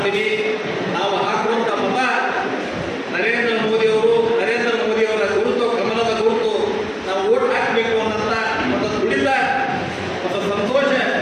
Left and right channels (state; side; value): identical; both; correlation 1.00